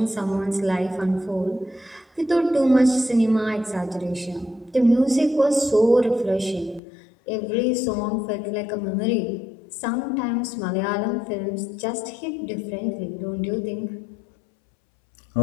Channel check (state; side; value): drops out; right; at 6.8 s